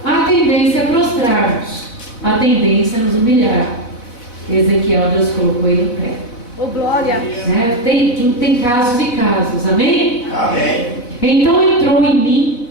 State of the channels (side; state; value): right; late; 4.1 ms